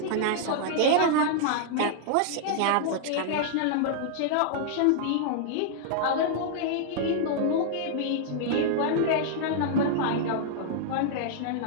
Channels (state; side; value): different; both; correlation -0.01